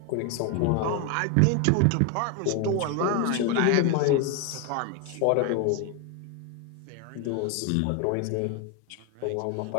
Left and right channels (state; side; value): different; both; correlation 0.01